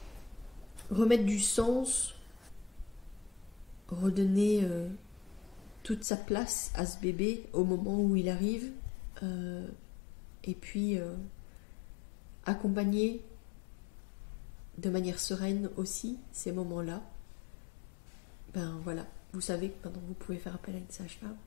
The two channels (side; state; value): right; drops out; at 6.1 s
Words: remettre du sens, redonner toute sa place à ce bébé au moment où il arrive, et puis accompagner de manière sereine aussi ces moments-là. Voilà, vous savez que maintenant vous pouvez faire appel à une sage-femme.